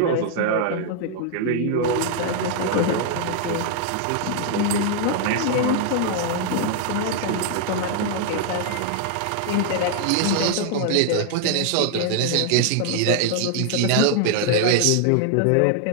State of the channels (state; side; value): different; both; correlation 0.00